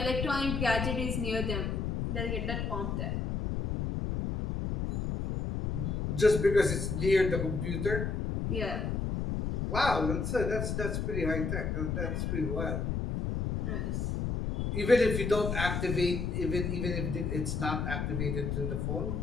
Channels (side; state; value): left; noise; rumble, 1 dB below the sound